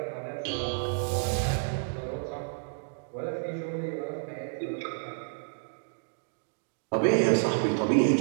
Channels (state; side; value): silent; left; digital silence